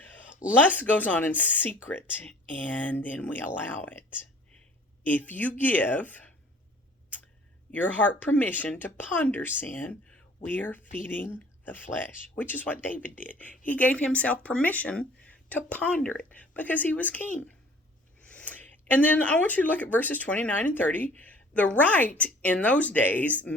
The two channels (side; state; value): both; normal; correlation 0.51